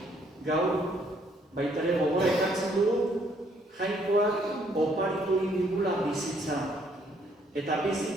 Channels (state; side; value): normal; both; correlation 0.67